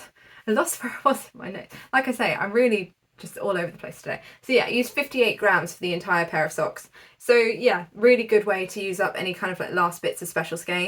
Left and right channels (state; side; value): identical; both; correlation 1.00